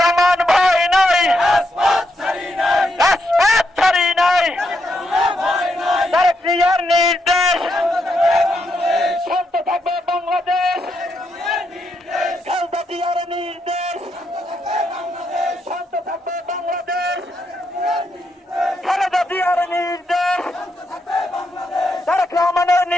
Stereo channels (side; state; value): both; normal; correlation 0.80